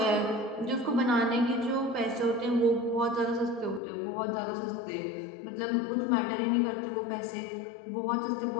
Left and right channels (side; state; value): right; drops out; at 3.8 s